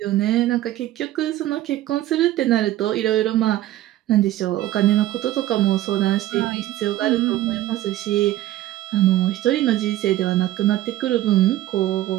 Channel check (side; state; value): left; quieter; 14.6 dB